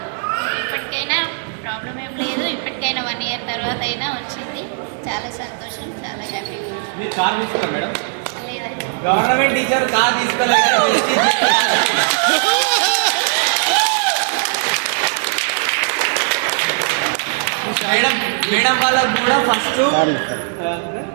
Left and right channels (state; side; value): silent; left; 64 dB below the other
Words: ఇప్పటికైనా ప్రాబ్లం ఏం లేదు. ఇప్పటికైనా 1 year తర్వాత అయినా వచ్చింది. చాలా సంతోషం, చాలా హ్యాపీగా. లేదండి, గవర్నమెంట్ టీచర్ కార్ తీసుకోలేదు.